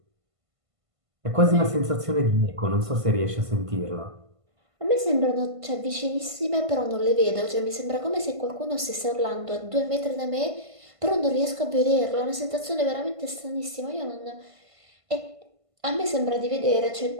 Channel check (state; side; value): late; left; 1.5 ms